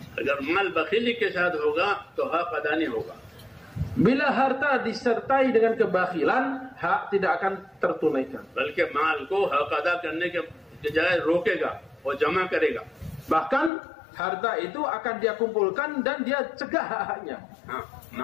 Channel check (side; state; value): right; drops out; at 13.7 s